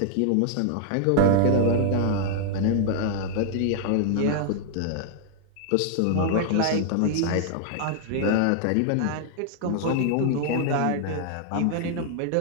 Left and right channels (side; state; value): both; different; correlation -0.01